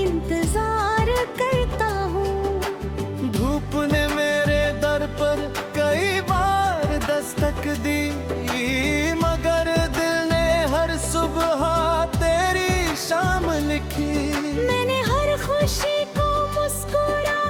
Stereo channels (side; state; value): both; identical; correlation 1.00